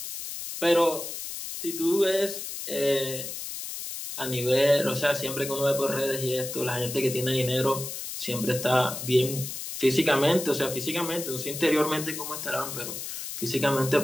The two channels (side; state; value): left; noise; hiss, 7 dB below the sound